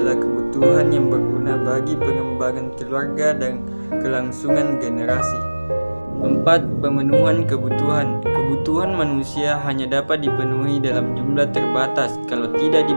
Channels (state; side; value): inverted; both; correlation -1.00